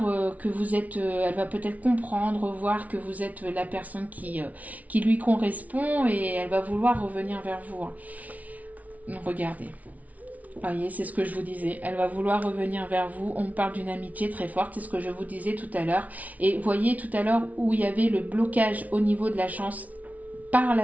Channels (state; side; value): late; left; 0.071 ms